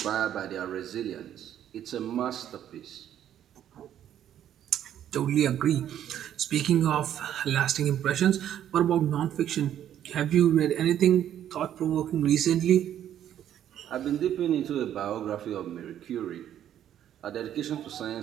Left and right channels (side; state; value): left; quieter; 10.7 dB